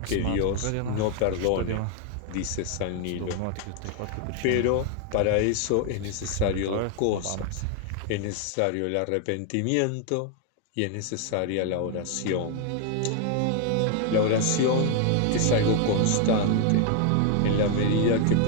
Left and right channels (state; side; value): different; both; correlation 0.00